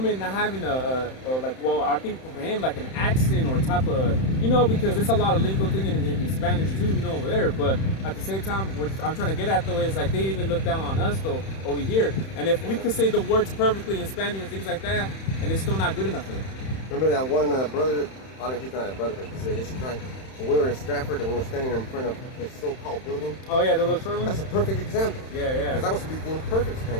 not having I think for him like an accent or type of, you know, because it's a lot of legal thing in Spanish too, you know, over there. But at the same time, what I'm trying to get at though is like they even look down on us though over here. And if we could say the words perfectly in Spanish and things like that, and it's still not good enough for them. Remember that one brother? I don't know, he's not a brother, but he's an Issachar. When we were in Stratford and we were standing in front of his so-called building. Oh yeah, the little short one. That's a perfect example. Yeah. Because I was speaking perfect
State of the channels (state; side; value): late; right; 31 ms